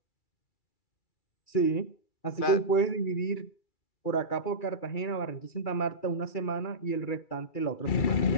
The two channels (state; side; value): late; right; 2.3 ms